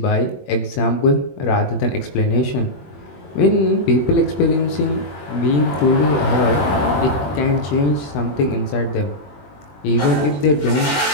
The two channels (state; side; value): late; right; 21 ms